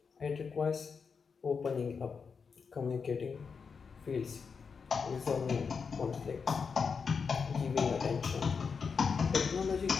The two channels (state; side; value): quieter; right; 5.6 dB